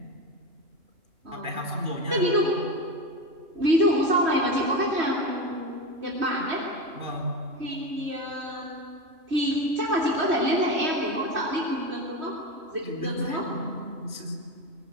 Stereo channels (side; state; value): left; late; 3.1 ms